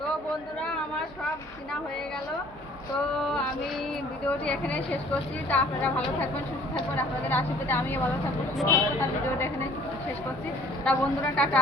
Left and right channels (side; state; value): both; normal; correlation 0.54